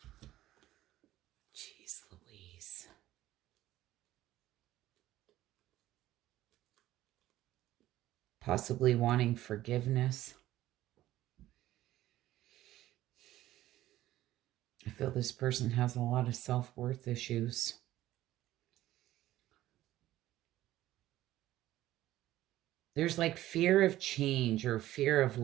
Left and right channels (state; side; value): quieter; left; 14.7 dB